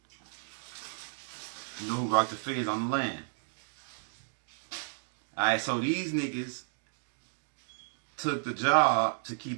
You know who rocked the Fez on the land. Alright, so these niggas took the job to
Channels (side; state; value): left; silent; digital silence